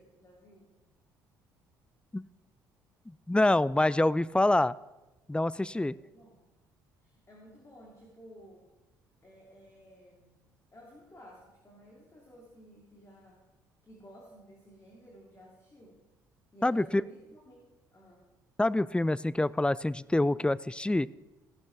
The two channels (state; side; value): normal; both; correlation 0.97